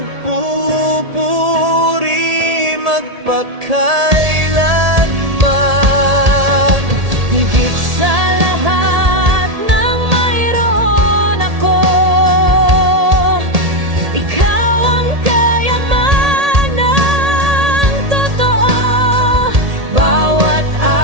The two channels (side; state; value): left; late; 1.8 ms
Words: magpakailanman. Higit sa lahat ng mayroon ako, ikaw ang kayamanang totoo. Bawat